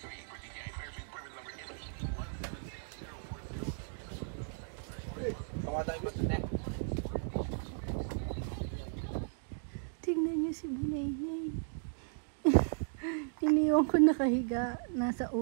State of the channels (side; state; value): left; silent; digital silence